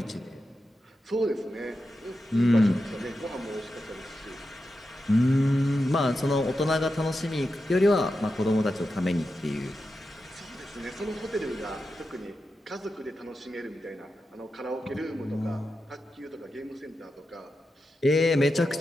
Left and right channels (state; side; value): normal; both; correlation 0.90